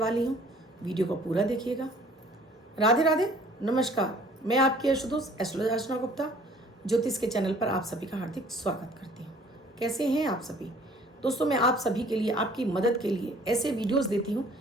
हूँ। वीडियो को पूरा देखिएगा। राधे राधे, नमस्कार। मैं आपकी एस्ट्रोदोस्त एस्ट्रोलॉजर अर्चना गुप्ता ज्योतिष के चैनल पर आप सभी का हार्दिक स्वागत करती हूँ। कैसे हैं आप सभी? दोस्तों, मैं आप सभी के लिए, आपकी मदद के लिए ऐसे वीडियोस देती हूँ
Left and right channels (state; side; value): normal; both; correlation 0.54